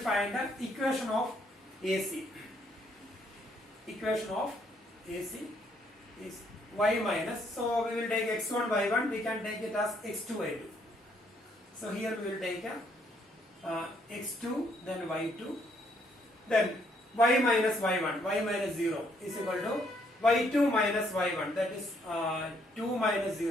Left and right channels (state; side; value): normal; both; correlation 0.70